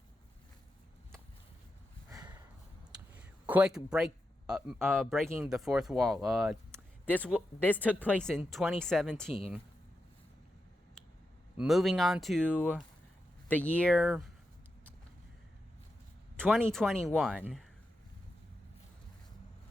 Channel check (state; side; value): normal; both; correlation 0.88